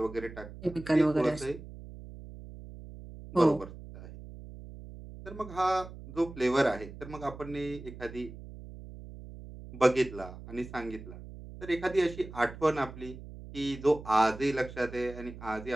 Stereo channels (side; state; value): right; noise; hum, 14 dB below the sound